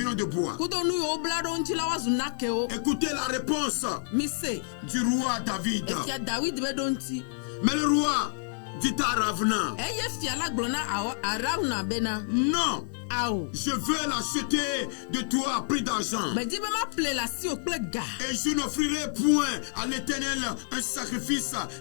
de bois. Kudo nu yiwo bla ɖo ŋuti la woazu nakewo. Écoutez la réponse Mise. du roi David. Efia David be ɖo ŋuti. Mais le roi dit à Ravna, Eye fia la gblɔ na Arauna bena. non, Awo. je veux l'acheter de toi à prix d'argent. Medi be ma ple la si o kple ga. Et je n'offrirai point à l'Éternel un sacrifice,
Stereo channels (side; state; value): right; silent; 59 dB below the other